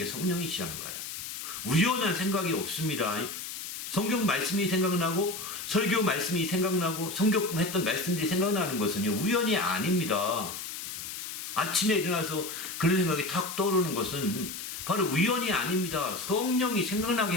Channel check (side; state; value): left; noise; hiss, 8 dB below the sound